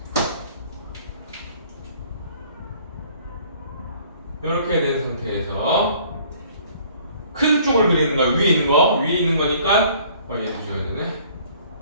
이렇게 된 상태에서 큰 쪽을 그리는 거야. 위에 있는 거. 위에 있는 거니까 얘도 줘야 되네.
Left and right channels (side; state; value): both; inverted; correlation -0.56